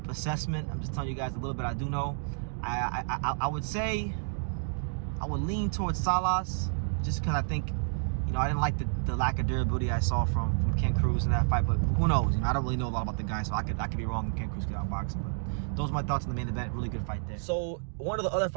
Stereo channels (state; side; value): silent; left; digital silence